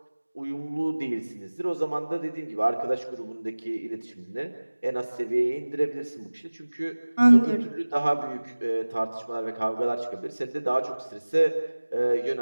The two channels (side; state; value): both; inverted; correlation -1.00